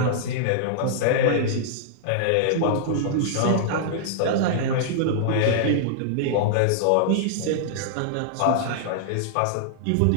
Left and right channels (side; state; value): both; different; correlation -0.01